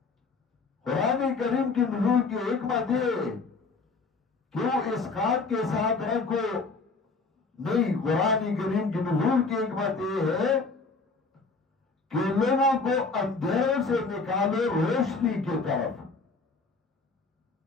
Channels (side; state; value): right; quieter; 4.1 dB